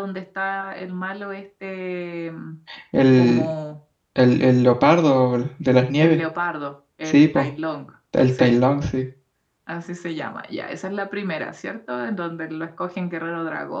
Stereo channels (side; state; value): both; identical; correlation 1.00